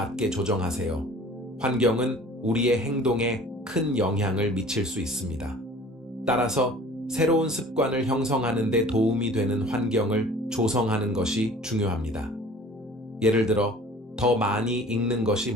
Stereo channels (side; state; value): both; normal; correlation 0.47